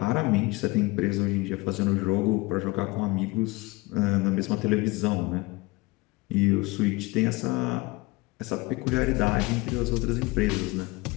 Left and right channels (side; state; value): right; quieter; 23.1 dB